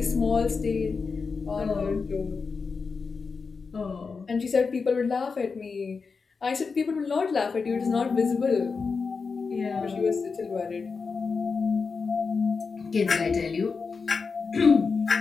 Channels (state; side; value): quieter; right; 4.9 dB